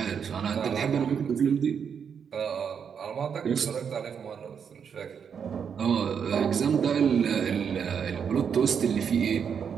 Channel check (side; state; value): left; quieter; 7.1 dB